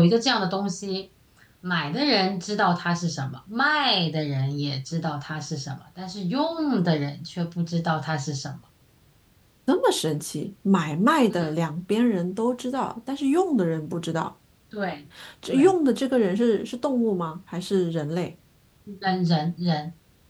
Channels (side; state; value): both; identical; correlation 1.00